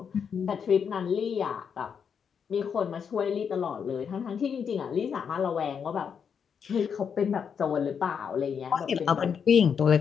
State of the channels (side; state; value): right; quieter; 7.0 dB